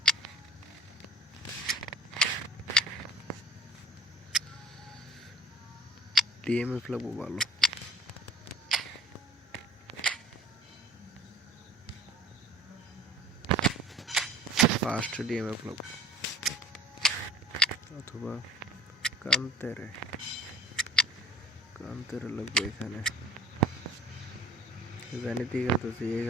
DMF লাগবো ভালো। ফার্স্ট ডিএমএফ লাগবো অথবা কান্তেরে লাগবে এখানে। জানিতে খেলতেছি এ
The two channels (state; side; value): normal; both; correlation 0.49